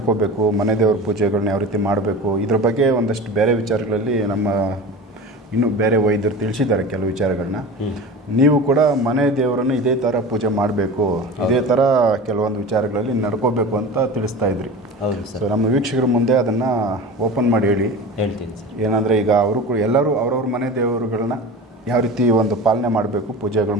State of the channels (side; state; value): both; normal; correlation 0.33